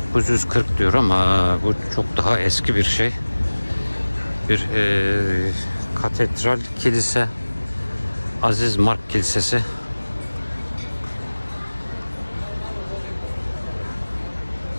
diyor ama bu çok daha eski bir şey. Bir katedral kilise, Aziz Mark Kilisesi.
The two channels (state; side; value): inverted; both; correlation -1.00